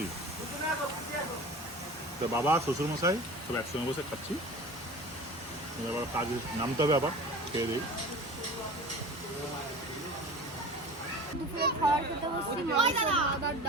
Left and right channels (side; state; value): both; normal; correlation 0.37